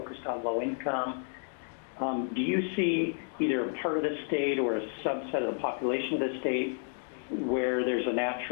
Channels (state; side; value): silent; right; 57 dB below the other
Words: on low income. Do you see either a part of the state or a subset of the population of the state where there's a